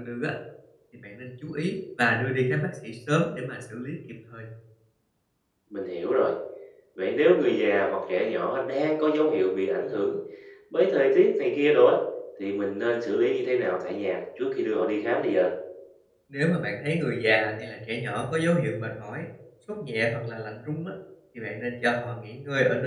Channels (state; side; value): identical; both; correlation 1.00